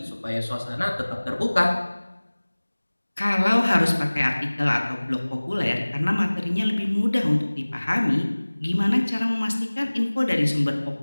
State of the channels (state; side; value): inverted; both; correlation -1.00